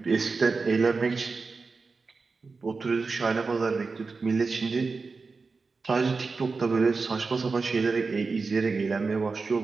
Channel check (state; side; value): quieter; left; 4.3 dB